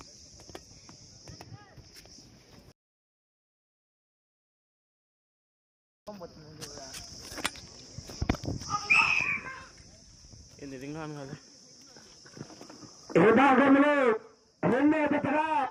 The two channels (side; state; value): both; identical; correlation 1.00